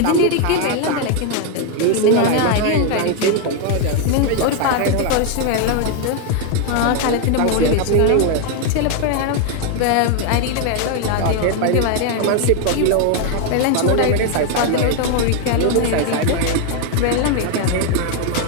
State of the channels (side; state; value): both; different; correlation 0.01